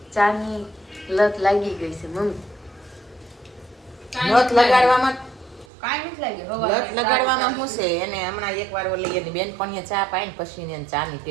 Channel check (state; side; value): drops out; left; at 5.7 s